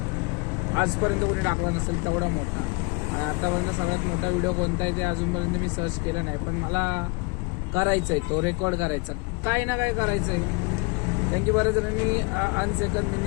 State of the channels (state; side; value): quieter; right; 27.6 dB